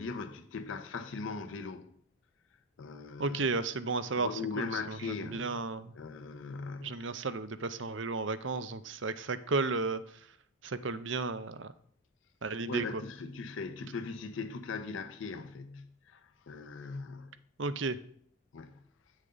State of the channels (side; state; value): both; normal; correlation 0.08